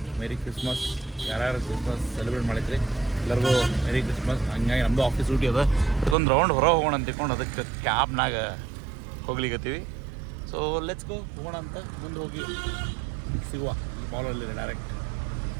ಮೇರಿ ಕ್ರಿಸ್ಮಸ್. ಯಾರ್ಯಾರು ಕ್ರಿಸ್ಮಸ್ ಸೆಲೆಬ್ರೇಟ್ ಮಾಡಿದ್ರಿ ಎಲ್ಲರಿಗೂ ಮೇರಿ ಕ್ರಿಸ್ಮಸ್. ಹಂಗಾಗಿ ನಮ್ಮದು ಆಫೀಸ್ ಡ್ಯೂಟಿ ಅದ, ಅದಕ್ಕೊಂದು ರೌಂಡ್ ಹೊರ ಹೋಗೋಣ ಅಂತ ತಿಳ್ಕೊಂಡು ಅದಕ್ಕೆ ಕ್ಯಾಬ್ನಾಗ ಹೋಗ್ಲಿಕತ್ತೀವಿ. ಸೊ ಲೆಟ್ಸ್ ಗೋ, ಹೋಗೋಣ ಅಂತ. ಮುಂದೆ ಹೋಗಿ ಸಿಗುವ ಈ ಮಾಲಲ್ಲಿ ಡೈರೆಕ್ಟ್.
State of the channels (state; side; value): drops out; left; at 6.2 s